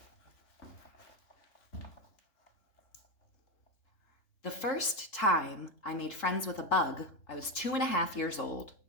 The first time I made friends with a bug, I was 2.5 years old.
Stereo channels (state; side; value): late; right; 3.7 ms